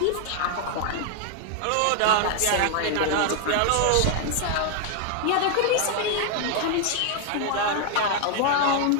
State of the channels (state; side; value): different; both; correlation 0.00